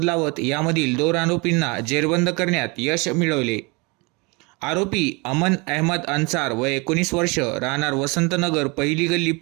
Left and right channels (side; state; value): left; quieter; 28.2 dB